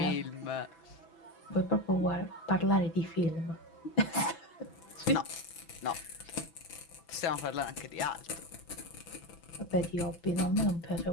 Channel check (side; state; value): right; late; 6.0 ms